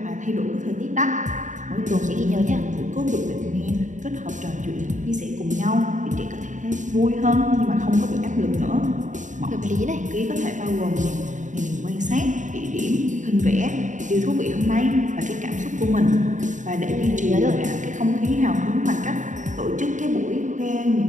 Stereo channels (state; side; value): late; left; 0.36 ms